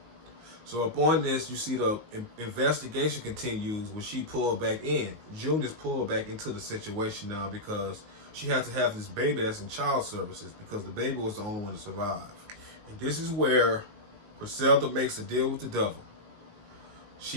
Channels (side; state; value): left; late; 19 ms